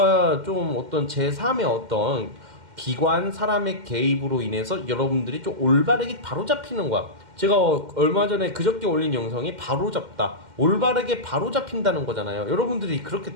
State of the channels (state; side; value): late; left; 2.1 ms